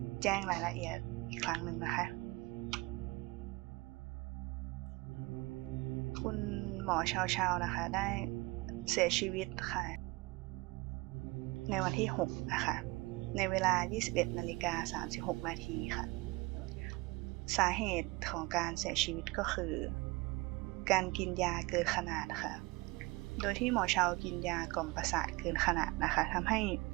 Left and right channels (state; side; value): quieter; left; 23.3 dB